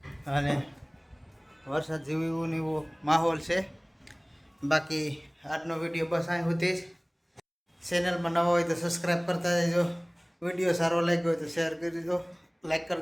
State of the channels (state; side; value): identical; both; correlation 1.00